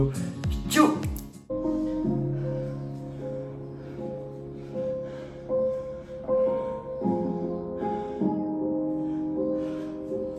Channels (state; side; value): identical; both; correlation 1.00